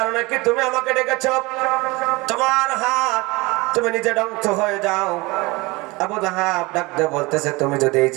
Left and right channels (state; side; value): quieter; left; 23.6 dB